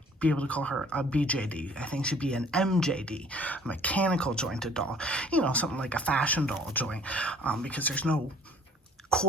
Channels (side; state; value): both; normal; correlation 0.54